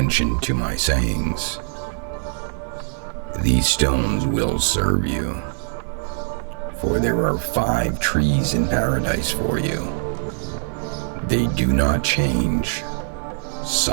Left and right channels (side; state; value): left; silent; digital silence